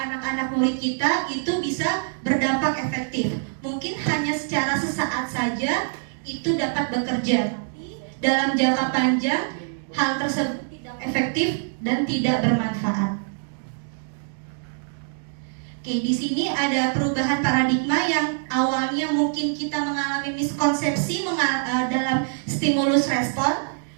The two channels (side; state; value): left; silent; digital silence